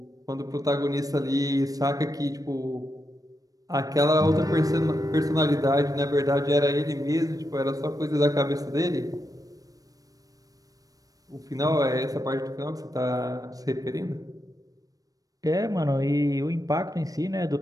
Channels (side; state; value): left; late; 0.18 ms